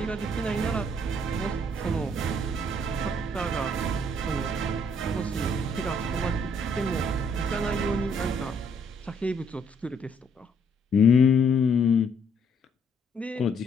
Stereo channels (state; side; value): normal; both; correlation 0.67